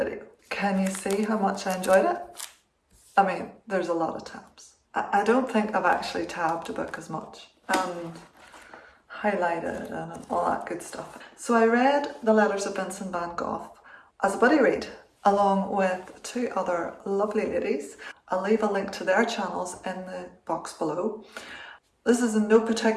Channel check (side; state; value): both; identical; correlation 1.00